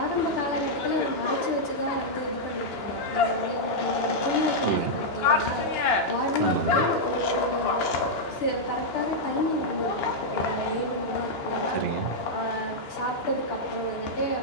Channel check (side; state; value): right; late; 2.9 ms